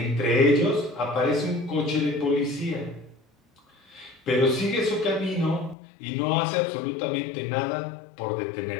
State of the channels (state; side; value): drops out; right; at 5.8 s